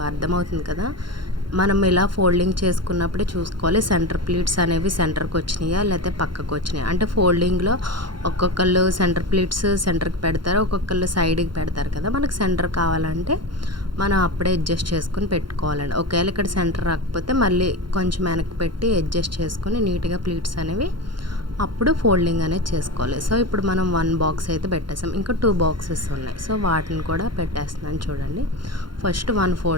అర్థమవుతుంది కదా. మనం ఇలా ఫోల్డింగ్ చేసుకున్నప్పుడే చూసుకోవాలి సెంటర్ ప్లీట్స్ అనేవి సెంటర్కి వచ్చినాయా లేకపోతే పక్కకు వచ్చినాయా. అంటే ఫోల్డింగ్లో ఒక్కొక్కళ్ళు సెంటర్ ప్లీట్స్ సెంటర్కి పెడతారు, ఒక్కొక్కళ్ళు సైడ్కి పెడతారు కదా. మనకు సెంటర్ కావాలంటే మనం అప్పుడే అడ్జస్ట్ చేసుకుని పెట్టుకోవాలండి. ఒకవేళ ఇక్కడ సెంటర్ రాకపోతే మళ్ళీ కొంచెం వెనక్కి పెట్టి అడ్జస్ట్ చేసుకుని నీట్గా ప్లీట్స్ అనేవి అప్పుడు ఫోల్డింగ్ అనేది చేసుకోవాలి. సో ఇప్పుడు మనం 1 బాక్స్ అయితే పెట్టేసాం, ఇంకా 2 బాక్సెస్ ఉన్నాయి. సో వాటిని కూడా పెట్టేస్తున్నాను. చూడండి ఫస్ట్ 1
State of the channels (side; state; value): left; late; 0.72 ms